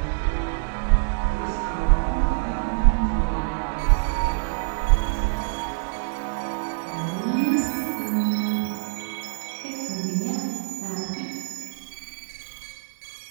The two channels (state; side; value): silent; left; 61 dB below the other